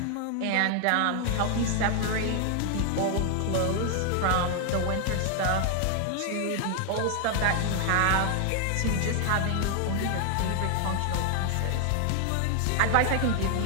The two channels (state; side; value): different; both; correlation 0.00